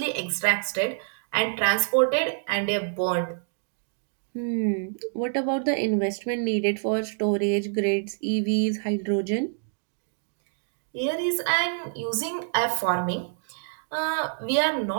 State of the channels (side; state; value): left; silent; digital silence